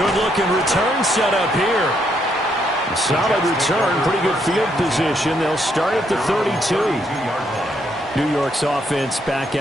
return set up here. Solid return, pretty good field position. They'll start at the 32. New York's offense back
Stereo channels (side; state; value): both; normal; correlation 0.74